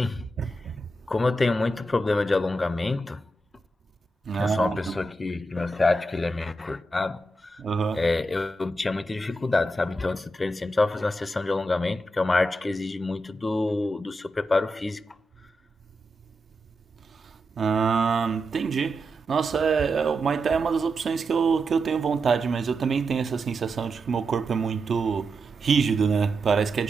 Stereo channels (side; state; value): both; normal; correlation 0.87